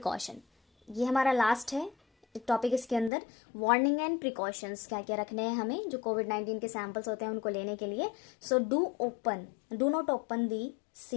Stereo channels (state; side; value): drops out; right; at 3.1 s